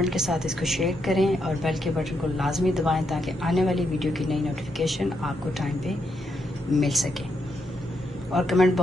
के साथ इसको शेयर करें और बेल के बटन को लाजमी दबाएं ताकि आने वाली वीडियो की नई नोटिफिकेशन आपको टाइम पे मिल सके। और कमेंट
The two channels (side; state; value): both; normal; correlation 0.80